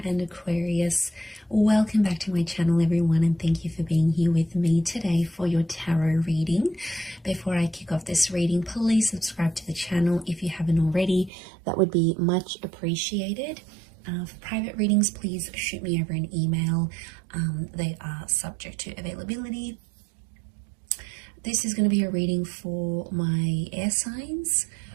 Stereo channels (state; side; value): drops out; left; at 11.3 s